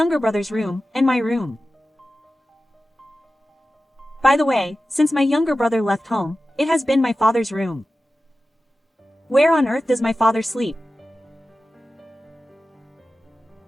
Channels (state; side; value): normal; both; correlation 0.94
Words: brother's room, and my room. By the way, since my younger brother left home, it has been my father's room. Where on earth does my father sleep?